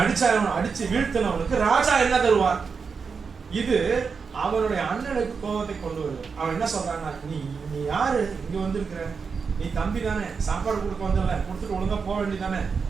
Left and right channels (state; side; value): quieter; left; 5.4 dB